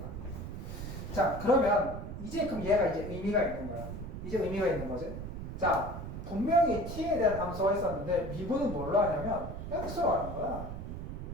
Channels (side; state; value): right; noise; rumble, 7 dB below the sound